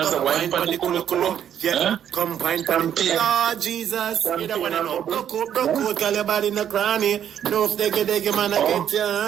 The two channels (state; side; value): quieter; left; 9.5 dB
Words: I said, wine pan the kulu. Yeah, come wine pan the Lord Jesus, you don't want to know. Broke out, call your body in the cranny. No, if they get man, I get your